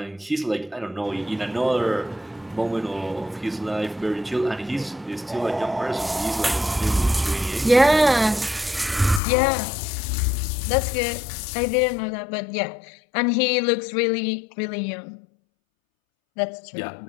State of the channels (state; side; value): drops out; right; at 9.2 s